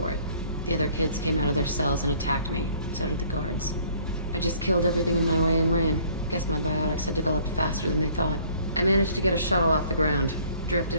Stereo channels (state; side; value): inverted; both; correlation -0.57